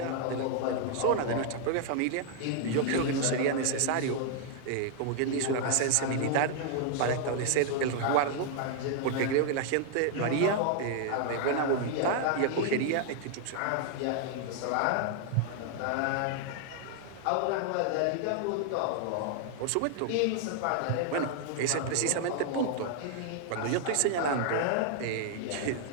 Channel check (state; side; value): different; both; correlation 0.00